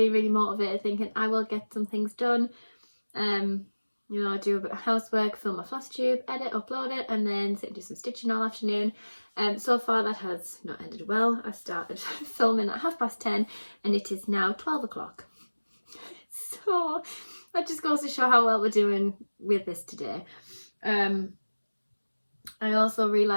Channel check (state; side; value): inverted; both; correlation -1.00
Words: really motivated, thinking I will get some things done. You know, I do a bit of housework, film my Flosstube, edit, upload it, and then sit and do some stitching all afternoon. So far that has not ended well. I started filming at 10:30 and it is now 12 o'clock. So that just goes to show how well we're doing with this today. I also